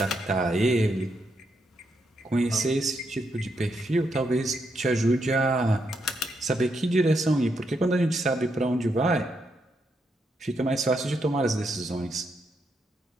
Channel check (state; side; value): normal; both; correlation 0.80